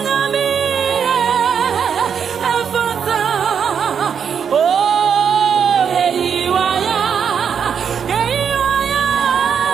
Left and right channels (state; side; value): quieter; left; 7.3 dB